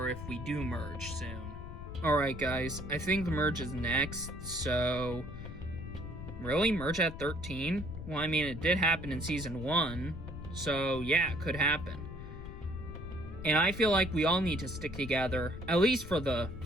if we do merge soon. Alright guys, I think the merge is next, so... Really? Merge at 13? Well, I mean, it did happen in Season 1, so yeah, it could happen. And I feel like we all need to stick together, at least for the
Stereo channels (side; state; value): left; noise; rumble, 11 dB below the sound